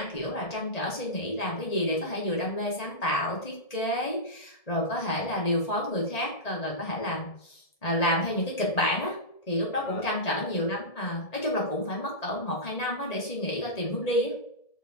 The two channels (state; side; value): late; right; 1.7 ms